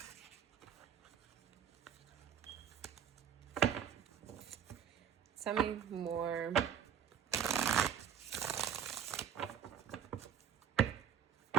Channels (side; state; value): left; quieter; 8.4 dB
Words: Tell me more.